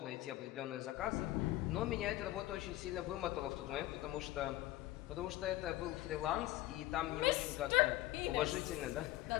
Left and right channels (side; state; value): right; quieter; 16.4 dB